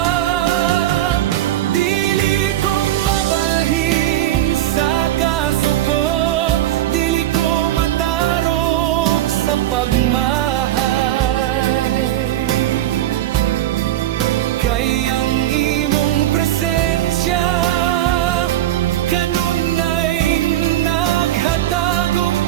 Kay ang imong presensya kanunay naghatag og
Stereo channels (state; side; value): quieter; left; 13.3 dB